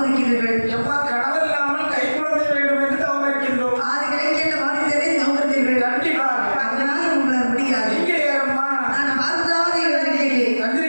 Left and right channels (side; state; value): both; inverted; correlation -1.00